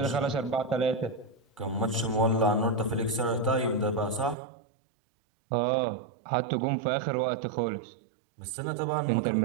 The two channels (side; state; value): left; drops out; at 4.4 s